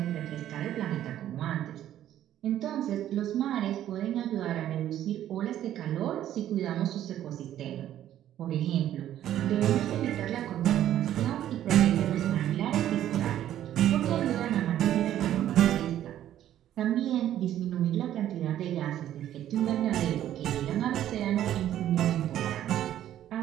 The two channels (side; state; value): left; quieter; 11.8 dB